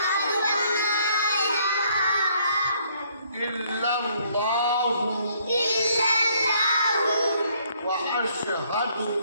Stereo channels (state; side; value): inverted; both; correlation -0.66